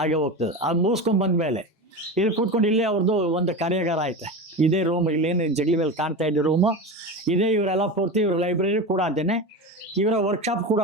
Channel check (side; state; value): both; normal; correlation 0.24